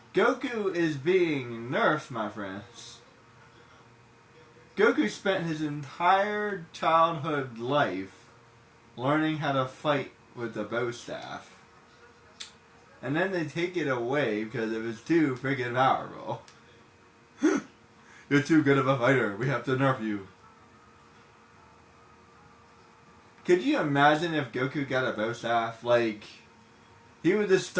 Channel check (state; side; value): identical; both; correlation 1.00